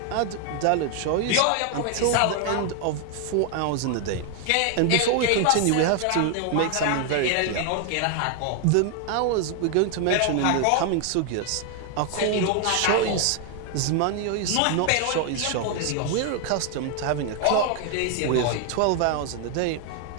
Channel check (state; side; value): different; both; correlation 0.00